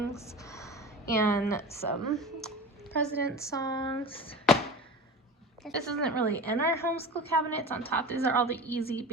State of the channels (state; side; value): normal; both; correlation 0.33